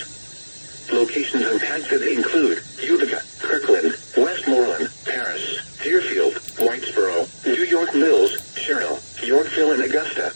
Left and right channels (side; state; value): both; inverted; correlation -1.00